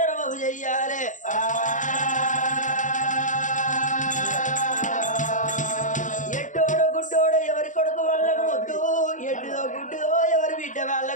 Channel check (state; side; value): late; right; 0.37 ms